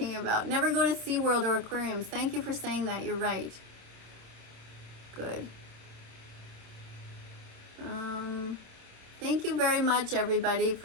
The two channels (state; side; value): late; left; 27 ms